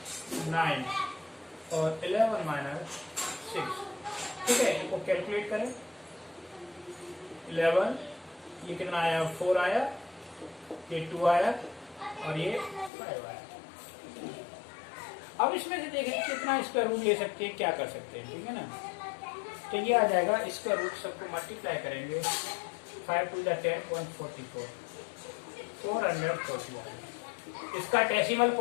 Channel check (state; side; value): drops out; right; at 12.9 s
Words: 9 और 11 माइनस 6, ठीक है। इनको कैलकुलेट करें। 11, ये कितना आया? 4 आया, ये 2 आया और ये 5 आया। अब इसमें से देखें कितना स्क्वायर रूट ले सकते हैं, क्या कर सकते हैं, ठीक है ना। तो ये आ जाएगा स्क्वायर रूट, सबको मल्टीप्लाई करेंगे। 5 to the 10 144, 440। इसका डेसिमल